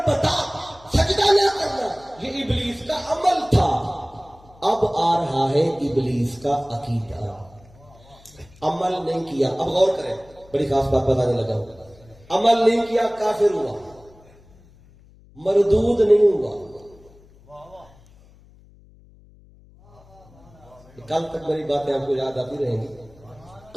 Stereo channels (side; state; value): left; noise; hum, 26 dB below the sound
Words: بتا سجدہ نہ کرنا, یہ ابلیس کا عمل تھا. اب آ رہا ہے ابلیس کا عقیدہ. عمل نہیں کیا, اب غور کریں, بڑی خاص بات بتانے لگا. عمل نہیں کیا کافر ہوا, مردود نہیں ہوا. کل تک میری باتیں آپ کو یاد آتی رہیں گی